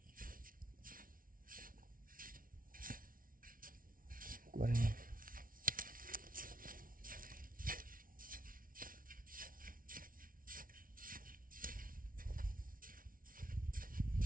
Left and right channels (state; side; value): late; left; 0.41 ms